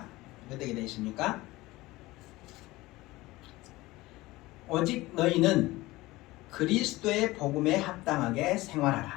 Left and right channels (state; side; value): quieter; right; 19.4 dB